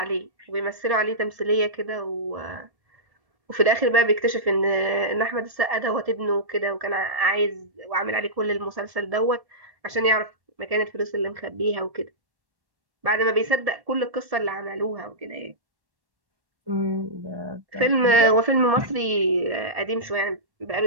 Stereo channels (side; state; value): left; late; 1.7 ms